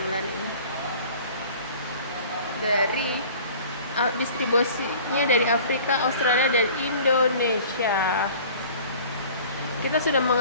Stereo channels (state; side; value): inverted; both; correlation -0.46